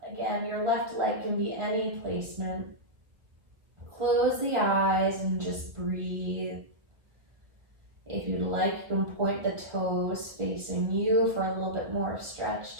Again, your left leg can be any placement. Close the eyes and just breathe. If you'd like, you can point the toes facing you for a little bit more stretch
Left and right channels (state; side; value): late; left; 1.5 ms